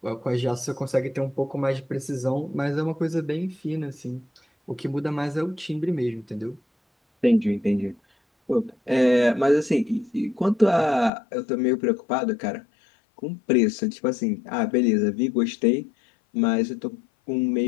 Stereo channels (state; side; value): drops out; right; at 11.1 s